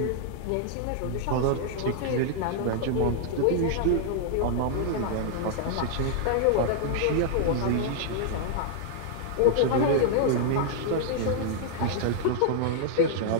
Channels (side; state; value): both; different; correlation -0.01